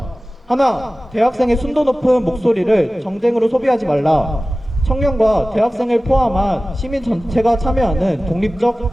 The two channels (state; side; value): normal; both; correlation 0.97